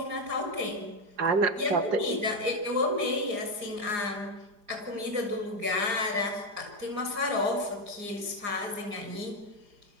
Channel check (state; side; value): late; left; 4.9 ms